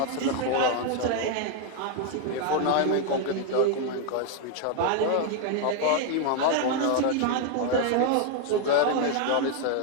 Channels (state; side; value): different; both; correlation 0.00